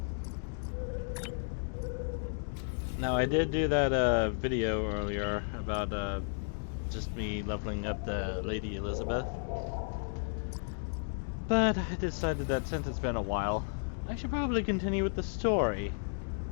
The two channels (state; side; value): silent; right; digital silence